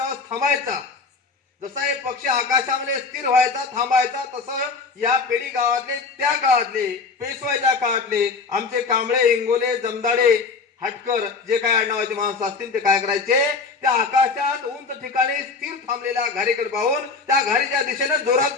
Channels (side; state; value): right; quieter; 4.6 dB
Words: थांबायचा, जसा एक पक्षी आकाशामध्ये स्थिर व्हायचा, थांबायचा, तसं या पेढी गावातले, त्या काळातले, पेशवाईच्या काळातले आमचे कांबळे, इंगोले, जमदाडे, हटकर जे काय आडनावाचे माणसं असतील ते काय करायचे? त्या आकाशात उंच ठिकाणी स्थिर थांबलेल्या घारीकडे पाहून त्या घारीच्या दिशेने जोरात